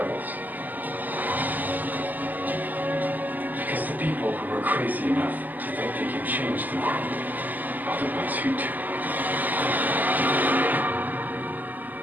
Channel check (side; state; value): left; late; 0.083 ms